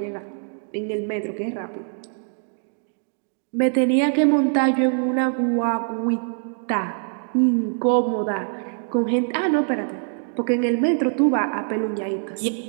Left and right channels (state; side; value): silent; left; 63 dB below the other